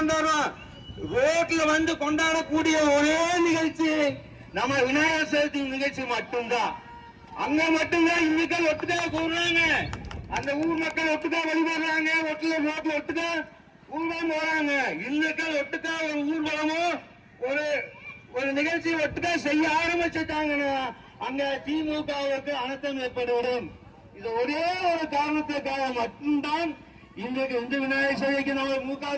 ரோட்ல வந்து கொண்டாடக்கூடிய ஒரே நிகழ்ச்சி நம்ம விநாயகர் சதுர்த்தி நிகழ்ச்சி மட்டும்தான். அங்க மட்டும்தான் இந்துக்கள் ஒட்டுக்கா கூடுறாங்க, அந்த ஊர் மக்கள் ஒட்டுக்கா வழிபடுறாங்க, ரோட்ல ஒட்டுக்கா ஊர்வலம் போறாங்க. இந்துக்கள் ஒட்டுக்கா ஒரு ஊர்வலமோ ஒரு நிகழ்ச்சி ஒட்டுக்கா செய்ய ஆரம்பிச்சுட்டாங்கன்னா அங்க திமுகவுக்கு அனர்த்தம் ஏற்பட்டுவிடும். இது ஒரே ஒரு காரணத்துக்காக மட்டும்தான் இன்றைக்கு இந்து விநாயகர் சதுர்த்திக்கு நம்ம மு.க.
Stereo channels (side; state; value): both; identical; correlation 1.00